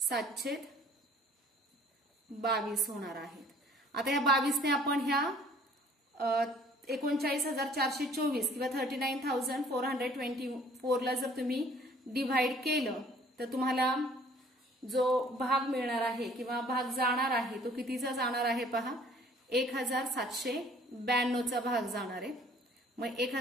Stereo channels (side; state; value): both; normal; correlation 0.55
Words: होणार आहेत. आता ह्या 22 ने आपण ह्या 39,424 किंवा 39,424 ला जर तुम्ही डिव्हाइड केलं तर तुम्हाला जो भाग मिळणार आहे किंवा भाग जाणार आहे तो कितीचा जाणार आहे पहा, 1,792चा भाग जाणार आहे. मग